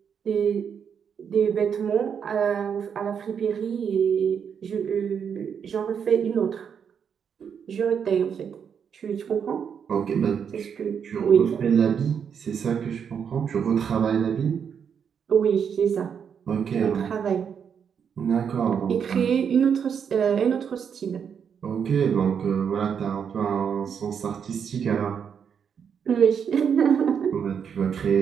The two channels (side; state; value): left; quieter; 7.3 dB